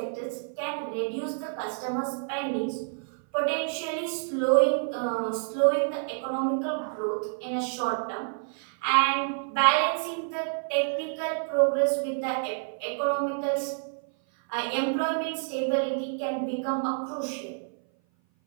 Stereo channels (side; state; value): left; silent; 56 dB below the other